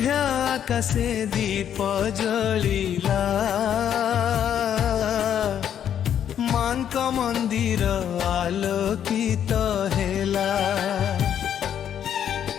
আকাশে দীপ জলিলা, মাଙ୍କ মন্দির আলোকিত হেলা।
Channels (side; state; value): right; quieter; 9.4 dB